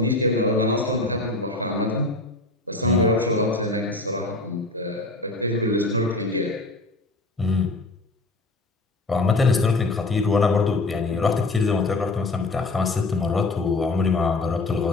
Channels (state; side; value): quieter; right; 3.1 dB